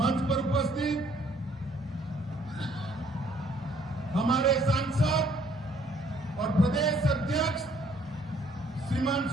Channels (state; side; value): normal; both; correlation 0.63